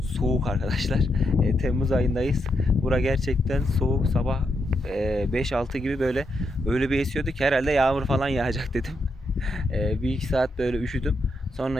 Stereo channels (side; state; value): both; normal; correlation 0.82